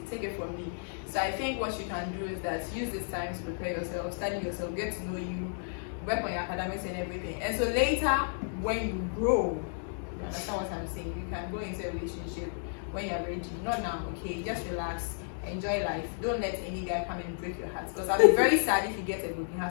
take it from me. So I think what you can do is that use this time to prepare yourself, study yourself, get to know you, work on your academics and everything. And so later, when you grow, you understand what I'm saying? You can go into a relationship when you're ready. Not now, okay? Just relax, enjoy life. Don't let any guy come and break your heart. Because I'll be very sad if you get a broken heart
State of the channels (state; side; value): silent; right; digital silence